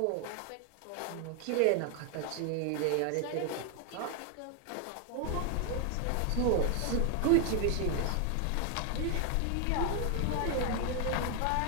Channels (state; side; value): different; both; correlation 0.00